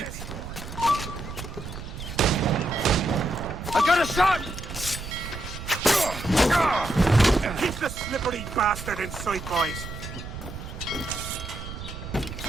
I got a shot! Keep the slippery bastard in sight, boys!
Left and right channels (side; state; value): right; noise; rumble, 9 dB below the sound